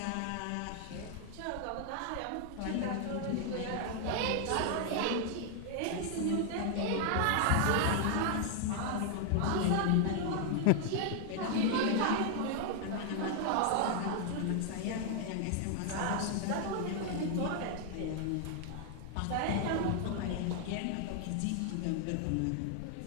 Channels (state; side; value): different; both; correlation 0.00